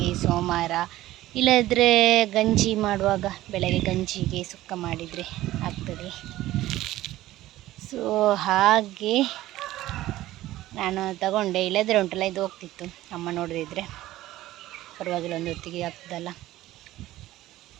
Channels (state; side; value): quieter; left; 15.6 dB